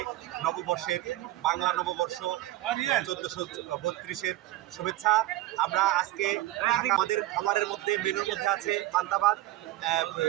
নববর্ষের বাংলা নববর্ষ 1432-এর শুভেচ্ছা। আমরা আজকে আমাদের খাবারের মধ্যে মেনুর মধ্যে আছে পান্তাভাত,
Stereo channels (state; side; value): quieter; left; 15.7 dB